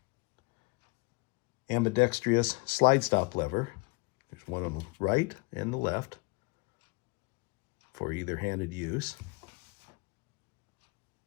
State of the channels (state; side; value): quieter; right; 29.0 dB